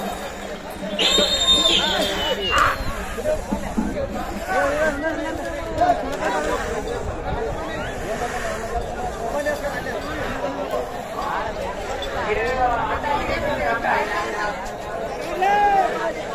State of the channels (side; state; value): both; identical; correlation 1.00